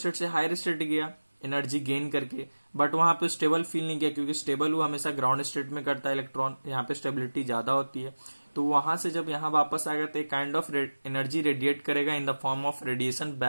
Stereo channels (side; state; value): both; inverted; correlation -1.00